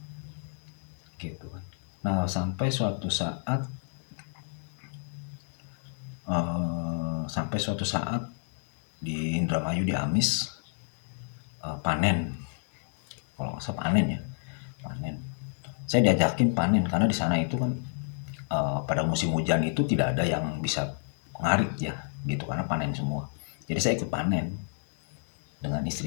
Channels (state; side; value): silent; right; 58 dB below the other